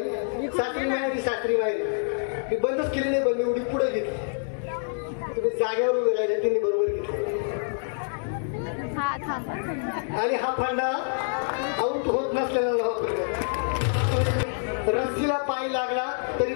सासरी माहेरी, सासरी माहेरी. मी बंदच केली नाही, पण मी उडी पुढे घेतली. तुम्ही जागेवर उभे राहिले, त्यांनी बरोबर घेतली. आणि हा फंडा आऊट होत नसलेला रस्सीला पाय लागला तरी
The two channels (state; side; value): silent; right; digital silence